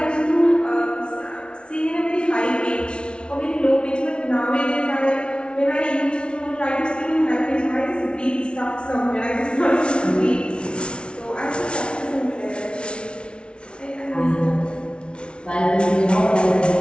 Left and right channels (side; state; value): right; late; 0.057 ms